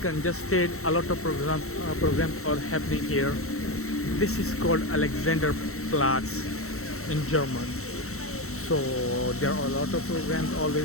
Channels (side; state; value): right; late; 0.63 ms